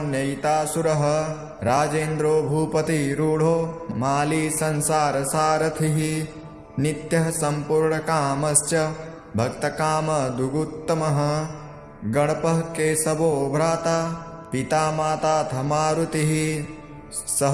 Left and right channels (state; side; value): identical; both; correlation 1.00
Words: राजेन्द्रो भूपतिरूढो माली संसारसारथिः नित्यः सम्पूर्णकामश्च भक्तकामदुगुत्तमः गणपः केशवो भ्राता पिता माताथ मारुतिः